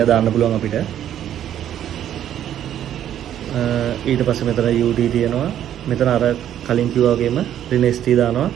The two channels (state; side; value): quieter; left; 10.8 dB